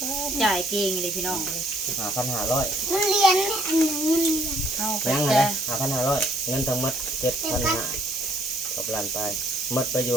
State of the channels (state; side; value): normal; both; correlation 0.64